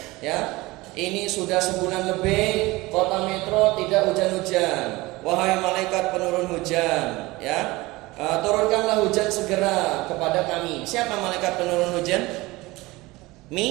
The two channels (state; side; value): quieter; left; 21.0 dB